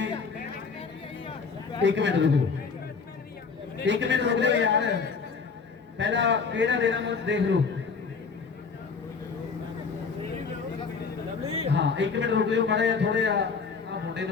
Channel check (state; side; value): quieter; right; 5.2 dB